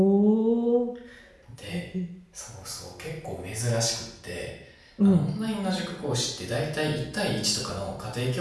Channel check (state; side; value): identical; both; correlation 1.00